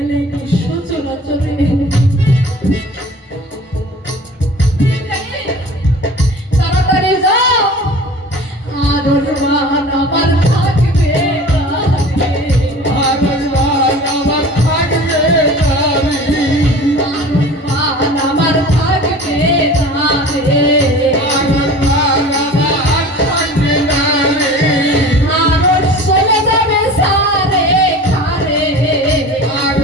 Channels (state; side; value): normal; both; correlation 0.40